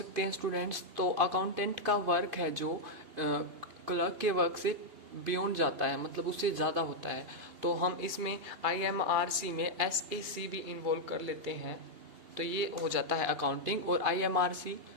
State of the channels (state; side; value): late; left; 2.8 ms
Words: हैं स्टूडेंट्स, तो अकाउंटेंट का वर्क है जो क्लर्क के वर्क से बियॉन्ड जाता है, मतलब उससे ज़्यादा होता है। तो हम इसमें IMRC में SAC भी इन्वॉल्व कर लेते हैं, तो ये हो जाता है अकाउंटिंग, और IMRC